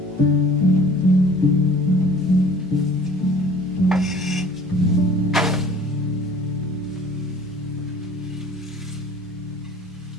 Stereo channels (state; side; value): normal; both; correlation 0.48